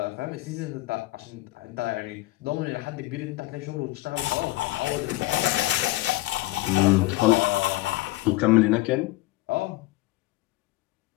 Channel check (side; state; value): right; quieter; 18.8 dB